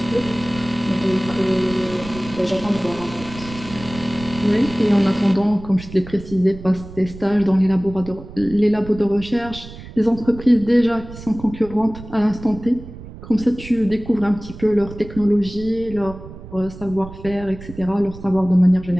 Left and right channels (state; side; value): noise; right; rumble, 15 dB below the sound